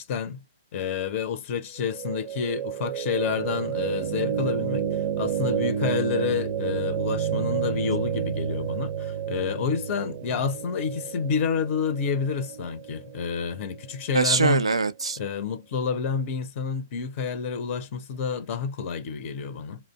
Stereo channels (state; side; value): inverted; both; correlation -0.31